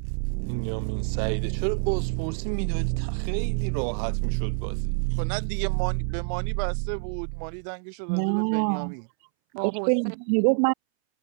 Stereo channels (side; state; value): left; silent; 60 dB below the other